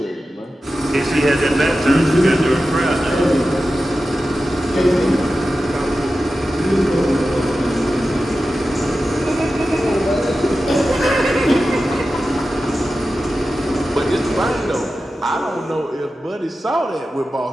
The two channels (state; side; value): normal; both; correlation 0.93